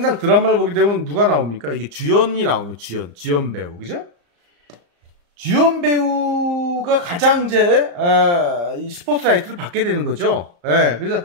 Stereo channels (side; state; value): left; late; 34 ms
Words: 드라마를 보게 되면 누가 나옵니까? 이게 주연이 나오면 주연 배우, 그죠? 주연 배우가 가장 이제 이 스포트라이트를 받게 되는 거죠. 예,